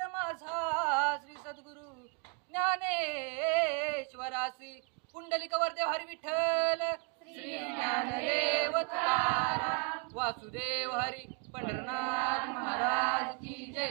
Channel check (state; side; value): quieter; left; 33.8 dB